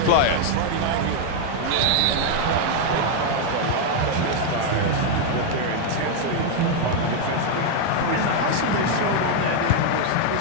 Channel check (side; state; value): both; different; correlation 0.00